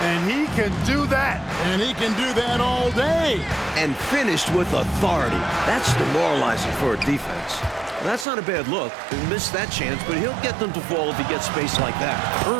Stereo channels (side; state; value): left; drops out; at 8.2 s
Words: And he can do that. And he can do that all day. And finished with authority. That's demoralizing for a defense. That's not a bad look. He missed that chance, but he'll get them to fall if he gets space like that.